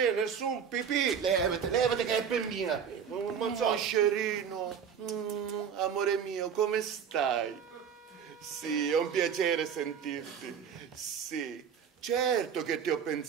nessun pipì. Levate che è per mia. Ma so. Moscerino, amore mio, come stai? Sì, è un piacere sentirti. Sì, certo che ti ho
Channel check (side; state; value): left; quieter; 7.5 dB